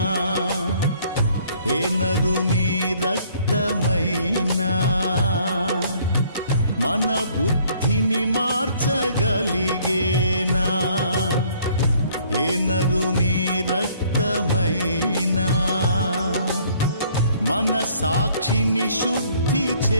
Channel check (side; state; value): both; inverted; correlation -0.60